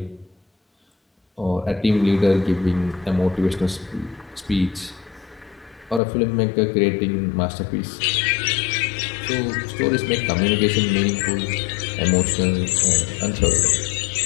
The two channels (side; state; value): right; drops out; at 6.0 s